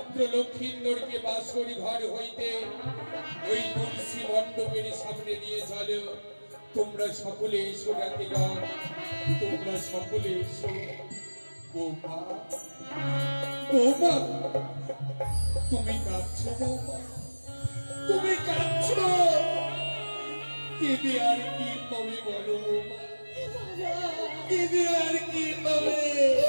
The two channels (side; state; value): both; inverted; correlation -1.00